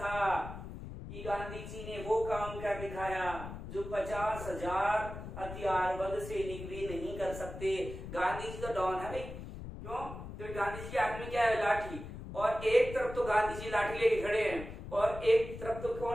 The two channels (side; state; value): left; noise; rumble, 10 dB below the sound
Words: कि गांधी जी ने वो काम कर दिखाया जो 50,000 हथियारबंद सैनिक भी नहीं कर सकते। गांधी जी तो डॉन है भाई, क्यों? तो गांधी जी के हाथ में क्या है? लाठी। और एक तरफ तो गांधी जी लाठी लेके खड़े हैं और एक तरफ तो